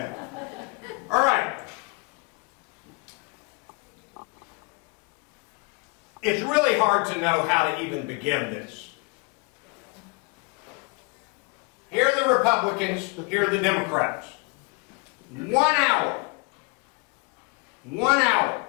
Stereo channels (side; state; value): right; quieter; 30.9 dB